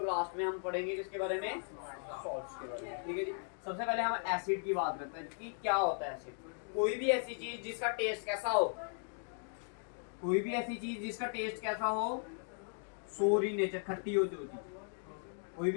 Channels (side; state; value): right; silent; 53 dB below the other